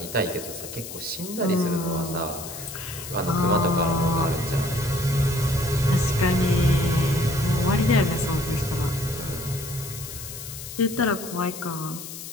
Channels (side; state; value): left; noise; hiss, 11 dB below the sound